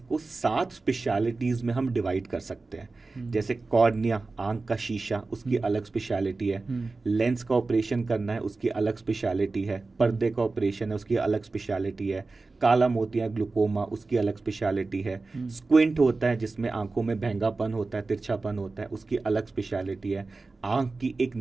7 स्पेशलिटीज में हम डिवाइड कर सकते हैं. जैसे कॉर्निया, आंख का शीशा, उसकी अलग स्पेशलिटी है. लेंस का ऑपरेशन करना है, उसकी अलग स्पेशलिटी है. पर्दे का ऑपरेशन है, उसकी अलग स्पेशलिटी है. काला मोतिया, ग्लूकोमा, उसकी अलग स्पेशलिटी है. स्क्विंट होता है जिसमें आंखों में भैंगापन होता है, तिरछापन होता है, उसकी अलग स्पेशलिटी है. आंख की एक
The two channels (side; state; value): left; quieter; 3.7 dB